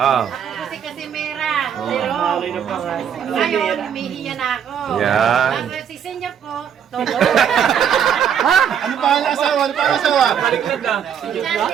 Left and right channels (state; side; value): quieter; left; 8.4 dB